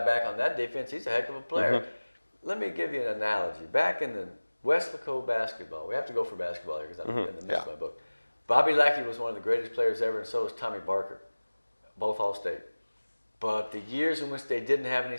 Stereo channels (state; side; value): inverted; both; correlation -1.00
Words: back on that defense. He's a heck of a player. Let me give you an analogy. Back in the Westlaco basketball, we have to go for basketball here because I'm in the midst of my book. Bobby Lackey was one of the greatest players ever, and so was Tommy Barker, both All-State. But the years in which they didn't have any